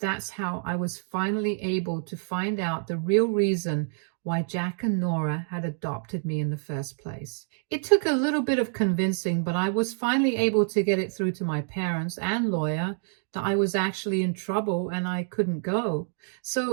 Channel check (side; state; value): left; silent; 60 dB below the other